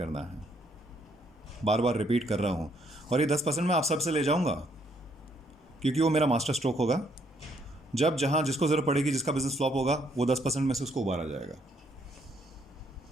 है। बार बार रिपीट कर रहा हूँ। और ये 10% मैं आप सबसे ले जाऊँगा, क्योंकि वो मेरा मास्टर स्ट्रोक होगा। जब जहाँ जिसको ज़रूरत पड़ेगी, जिसका बिजनेस फ्लॉप होगा, वो 10% में से उसको उबारा जाएगा।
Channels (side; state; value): both; normal; correlation 0.69